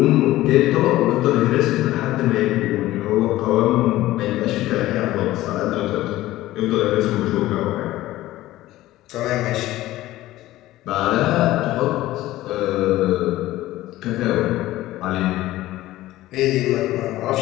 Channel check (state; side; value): quieter; right; 16.1 dB